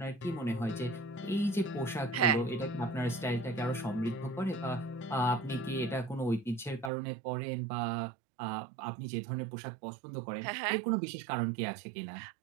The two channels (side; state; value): left; drops out; at 6.9 s